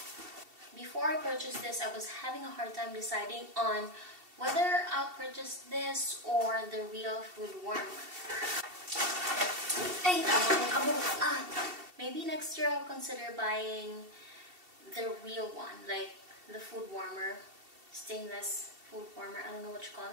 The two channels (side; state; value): left; late; 2.7 ms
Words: Before I purchased this, I was having a hard time deciding on whether I'll purchase this or the real food warmer. Hey, maybe next year I'll consider buying the real one, like the food warmer, stainless food warmer. I don't know what you call